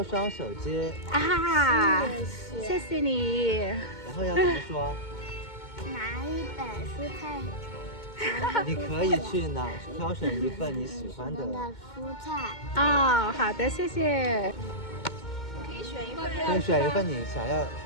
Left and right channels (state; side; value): late; right; 2.2 ms